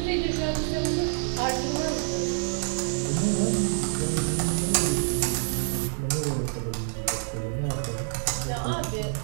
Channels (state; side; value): silent; left; 60 dB below the other